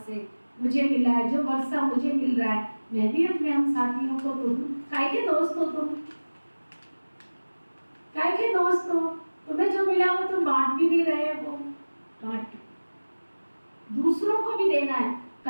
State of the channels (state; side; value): inverted; both; correlation -1.00